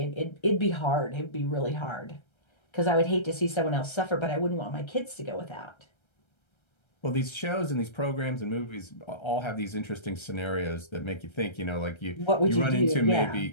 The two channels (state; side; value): late; right; 1.3 ms